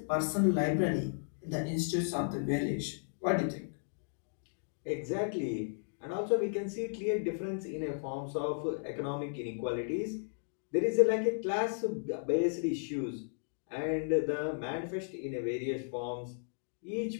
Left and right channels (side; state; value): right; silent; digital silence